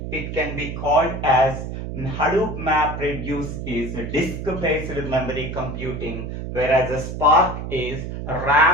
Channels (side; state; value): right; noise; hum, 6 dB below the sound